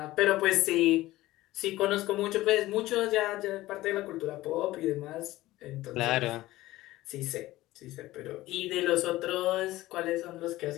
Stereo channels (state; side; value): quieter; right; 17.0 dB